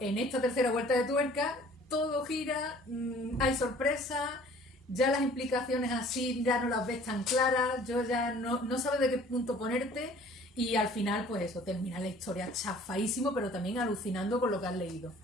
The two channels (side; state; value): both; normal; correlation 0.52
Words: esta tercera vuelta de tuerca, todo gira, hay sorpresas, ya las implicaciones así ya no las ves tan claras, yo ya no sabes de qué punto ponerte, y al final pues eso, termina la historia chafadísimo, pero también alucinando con lo que has leído.